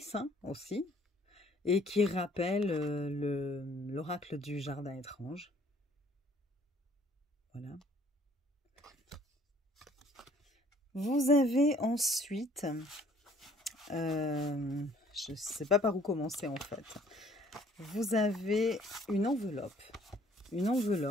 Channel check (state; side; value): normal; both; correlation 0.59